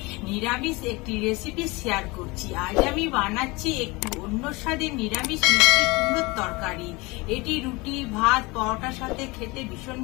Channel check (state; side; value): quieter; right; 24.3 dB